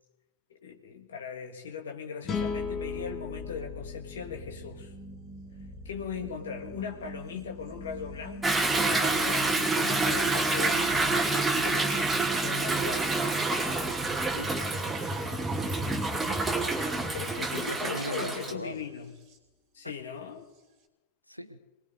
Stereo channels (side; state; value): both; normal; correlation 0.57